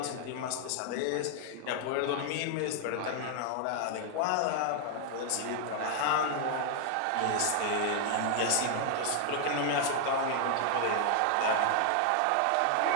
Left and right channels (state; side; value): different; both; correlation 0.00